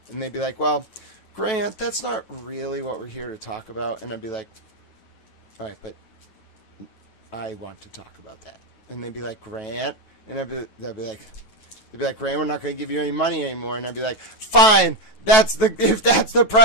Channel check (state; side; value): late; right; 9.2 ms